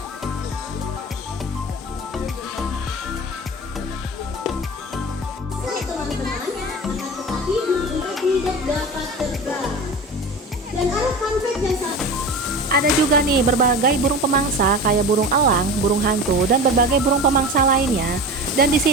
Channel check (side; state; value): both; normal; correlation 0.31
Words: Teman-teman, tetapi burung tidak dapat terbang. Dan ada fun fact yang Ada juga nih berbagai burung pemangsa kayak burung elang, burung hantu, dan berbagai burung pemangsa lainnya. Dan di